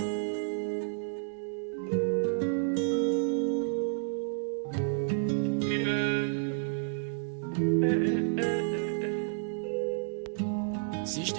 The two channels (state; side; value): silent; left; digital silence